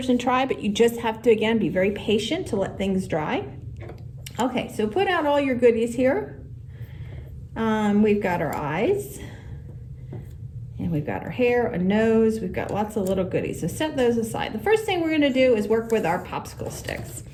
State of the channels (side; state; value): both; identical; correlation 1.00